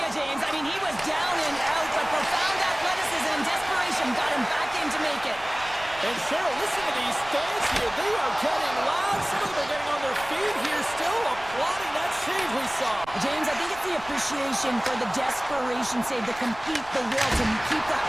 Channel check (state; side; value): noise; right; rumble, 20 dB below the sound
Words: James. I mean, he was down and out, but profound athleticism and desperation got him back in to make it. And Cheryl, listen to these fans here. They are getting loud. Some of them are getting on their feet here still, applauding that save we saw. James, I think it's the appreciation for the desperation save, the compete, the will to keep that